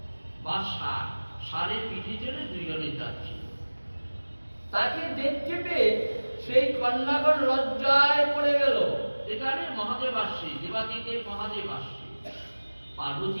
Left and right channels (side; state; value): both; inverted; correlation -1.00